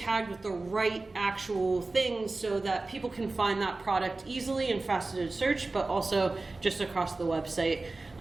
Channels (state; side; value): quieter; left; 3.4 dB